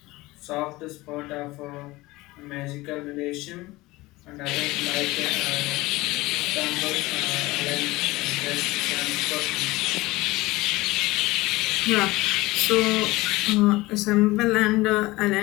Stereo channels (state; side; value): quieter; right; 20.3 dB